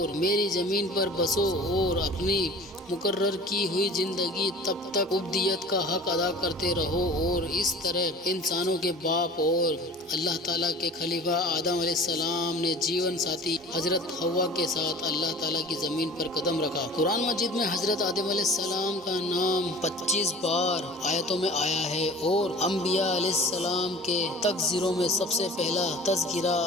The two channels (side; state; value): both; normal; correlation 0.42